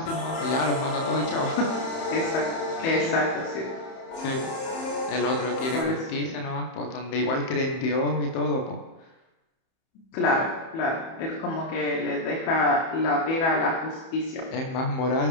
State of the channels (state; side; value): late; right; 31 ms